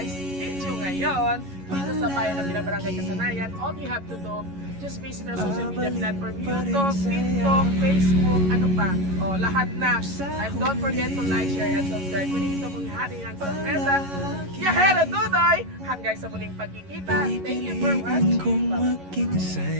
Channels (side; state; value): left; late; 11 ms